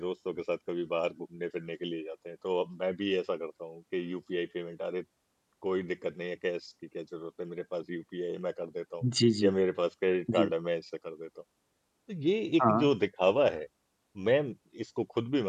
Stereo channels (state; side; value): identical; both; correlation 1.00